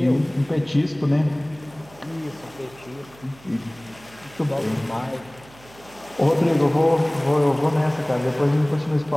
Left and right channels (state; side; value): noise; right; hum, 24 dB below the sound